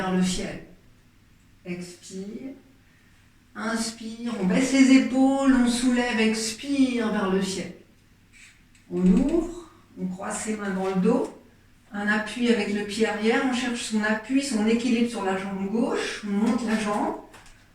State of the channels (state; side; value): identical; both; correlation 1.00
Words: le ciel. Expire. Inspire. On baisse les épaules. On soulève. Expire vers le ciel. On ouvre. On croise ses mains dans le dos. Un appui avec le pied arrière, on cherche son appui, son équilibre sur la jambe gauche, on monte la jambe,